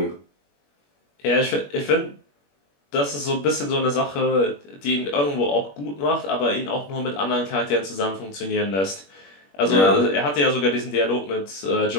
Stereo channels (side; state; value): right; late; 21 ms